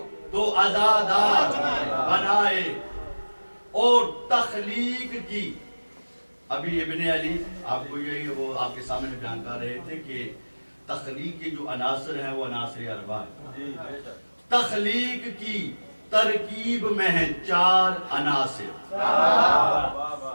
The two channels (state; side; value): inverted; both; correlation -1.00